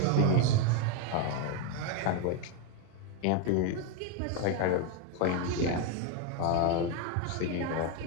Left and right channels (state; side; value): different; both; correlation 0.02